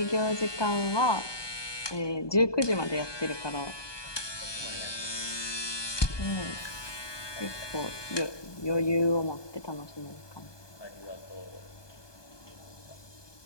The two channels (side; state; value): right; late; 1.2 ms